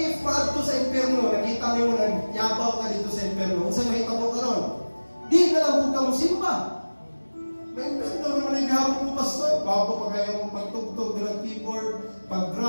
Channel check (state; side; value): inverted; both; correlation -1.00